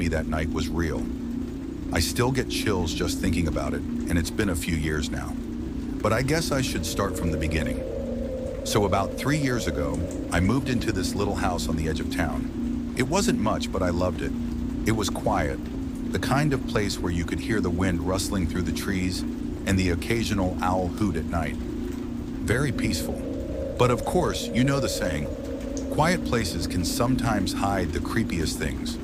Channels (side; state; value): both; identical; correlation 1.00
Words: that night was real. I still get chills just thinking about it, and it's been a few years now. But I guess I should start from the beginning. So about 3 years ago, I moved into this little house on the edge of town. It wasn't much, but I loved it. It was quiet, the kind of place where you could hear the wind rustling through the trees and the occasional owl hoot at night. Very peaceful. But of course, you know the saying, quiet places can sometimes hide the creepiest things.